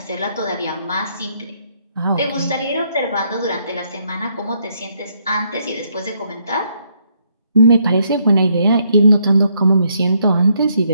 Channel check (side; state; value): both; inverted; correlation -0.73